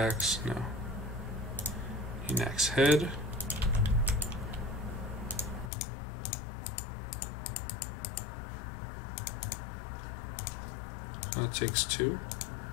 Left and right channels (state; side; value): drops out; right; at 5.7 s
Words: No. An axe head. That takes 2.